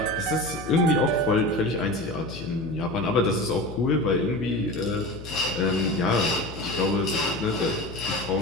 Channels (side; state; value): left; noise; hum, 12 dB below the sound